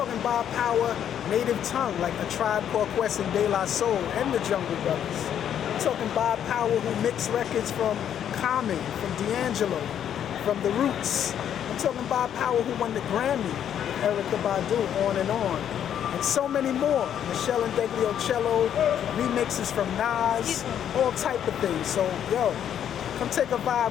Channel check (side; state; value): right; quieter; 9.6 dB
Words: Bob Power, Native Tongue, like A Tribe Called Quest and De La Soul, and the Jungle Brothers. I'm talking Bob Power, who mixed records from Common, from D'Angelo, from The Roots. I'm talking Bob Power, who won the Grammy with Erykah Badu, on and on. And so many more. Michelle and Degliocello, remixes from Nas, all type of things. So, yo, come take a